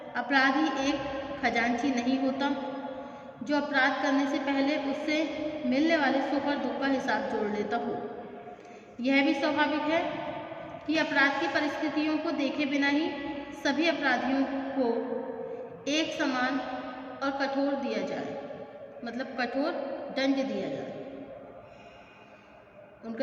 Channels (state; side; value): identical; both; correlation 1.00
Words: अपराधी एक खजांची नहीं होता जो अपराध करने से पहले उससे मिलने वाले सुख और दुख का हिसाब जोड़ लेता हो. यह भी स्वाभाविक है कि अपराध की परिस्थितियों को देखे बिना ही सभी अपराधियों को एक समान और कठोर दिया जाए, मतलब कठोर दंड दिया जाए.